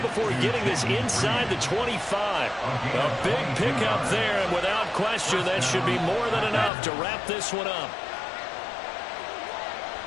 before getting this inside the 25. A big pickup there, and without question, that should be more than enough to wrap this one up.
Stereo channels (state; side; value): drops out; right; at 6.7 s